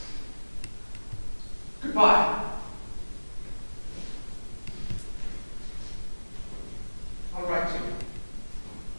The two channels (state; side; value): inverted; both; correlation -1.00